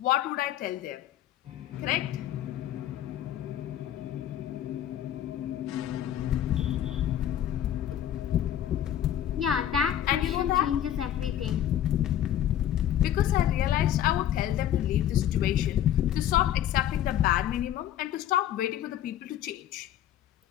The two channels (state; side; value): quieter; right; 11.3 dB